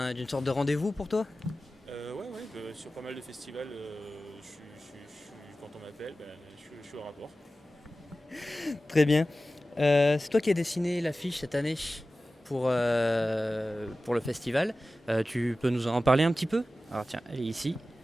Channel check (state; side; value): normal; both; correlation 0.95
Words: sorte de rendez-vous pour toi? Ouais, sur pas mal de festivals, quand on m'appelle, je suis au rapport. Très bien. C'est toi qui as dessiné l'affiche cette année pour le festival. Tu peux nous en parler un petit peu? Alors tiens, elle est ici.